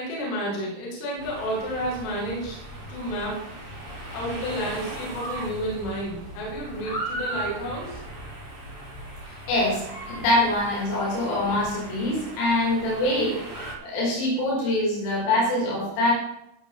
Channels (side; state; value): right; late; 30 ms